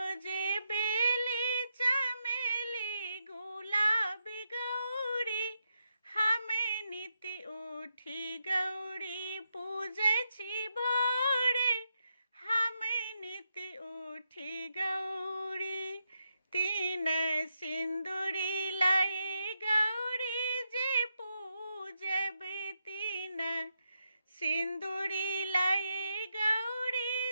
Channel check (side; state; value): both; inverted; correlation -0.84